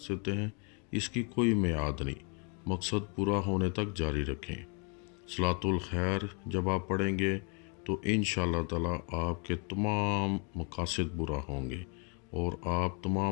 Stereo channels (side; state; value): right; quieter; 36.4 dB